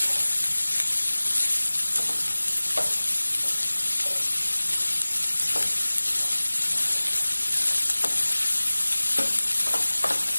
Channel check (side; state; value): both; inverted; correlation -1.00